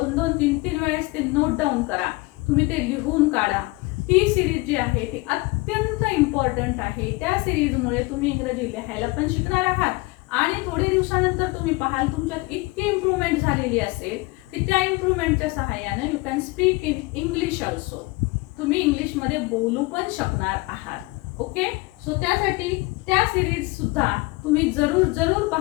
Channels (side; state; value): right; quieter; 23.4 dB